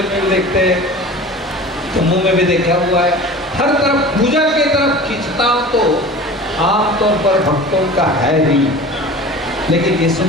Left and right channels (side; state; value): both; normal; correlation 0.38